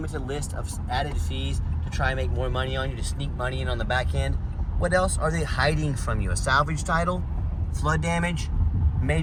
list of added fees to try and make more money on you, to sneak money in on the back end, what else are they hiding from you? A salvage title, flood damage,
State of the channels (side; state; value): both; identical; correlation 1.00